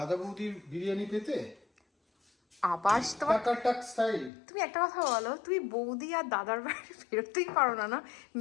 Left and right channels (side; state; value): right; drops out; at 4.3 s